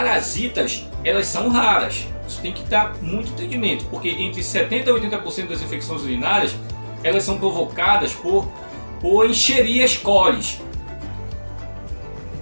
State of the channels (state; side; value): inverted; both; correlation -1.00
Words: elas são raras. Isso tem que dar muito entendimento, porque entre 70% e 80% das infecções urinárias, elas são provocadas por Escherichia coli.